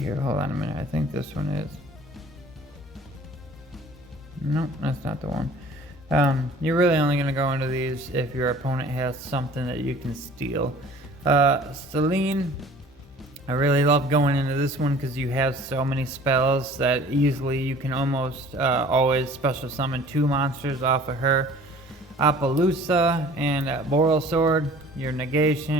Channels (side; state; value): both; normal; correlation 0.49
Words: Hold on a minute. I think this one is. Nope, that's not the one. You're really only going to go into these if your opponent has something that you can steal. Selene. I really love going into this one because you have so many spells that easily you can almost always special summon 2 monsters off of her. Appaloosa and Boral Sword, your